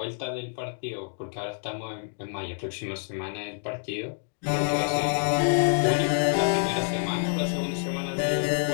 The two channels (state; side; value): silent; right; digital silence